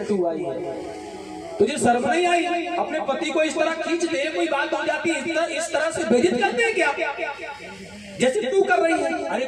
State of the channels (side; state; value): right; noise; hum, 28 dB below the sound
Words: तू आई है, तुझे शर्म नहीं आई? अपने पति को इस तरह खींच दे, कोई बात हो जाती है इस तरह से बेइज्जत करते हैं क्या जैसे तू कर रही है? अरे